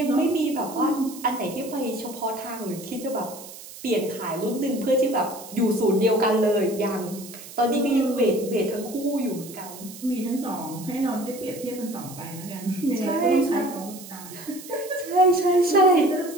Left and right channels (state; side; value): noise; right; hiss, 15 dB below the sound